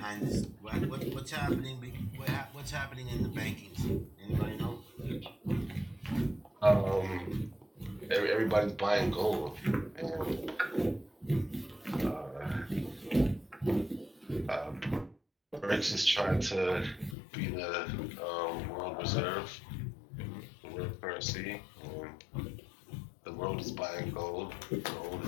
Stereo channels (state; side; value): drops out; right; at 17.2 s